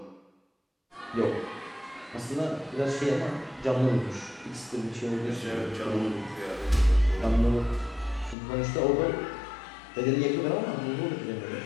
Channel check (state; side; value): drops out; right; at 8.3 s